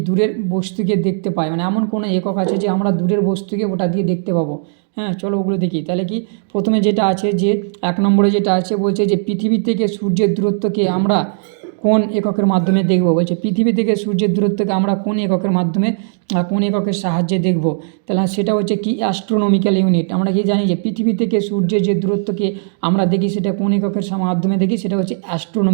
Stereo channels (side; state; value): left; silent; 63 dB below the other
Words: দূরের বস্তুকে দেখতে পাই, মানে এমন কোনো একক আছে যে আমরা দূরের বস্তুকে ওটা দিয়ে দেখতে পাবো। হ্যাঁ চলো ওগুলো দেখি। তাহলে কি প্রথমে যেটা আছে যে 1 নম্বরে যেটা আছে বলছে যে পৃথিবী থেকে সূর্যের দূরত্বকে আমরা কোন এককের মাধ্যমে দেখব। বলছে পৃথিবী থেকে সূর্যের দূরত্বকে আমরা কোন এককের মাধ্যমে কোন এককের সাহায্যে দেখব। তাহলে সেটা হচ্ছে কি অ্যাস্ট্রোনমিক্যাল ইউনিট। আমরা কি জানি যে পৃথিবী থেকে সূর্যের যে দূরত্বকে আমরা দেখি সেটা কোন এককের মাধ্যমে দেখি, সেটা হচ্ছে